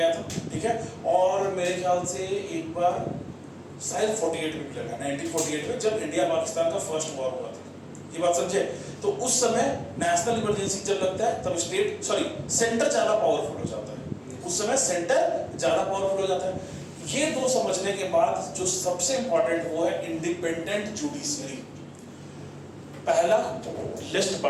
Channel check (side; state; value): both; identical; correlation 1.00